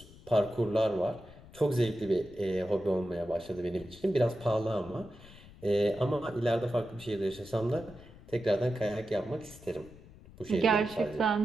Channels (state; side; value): noise; left; rumble, 20 dB below the sound